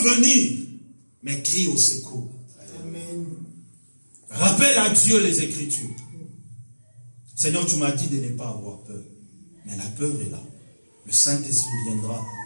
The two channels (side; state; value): both; inverted; correlation -1.00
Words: venir, mais crie au secours. Amen. Rappelle à Dieu les Écritures. Seigneur, tu m'as dit de ne pas avoir peur. Mais la peur est là. Le Saint-Esprit viendra.